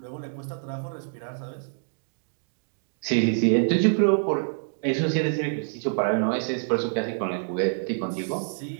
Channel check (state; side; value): silent; left; digital silence